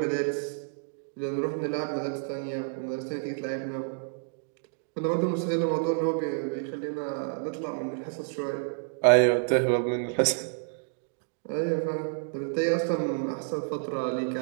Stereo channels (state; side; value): silent; left; digital silence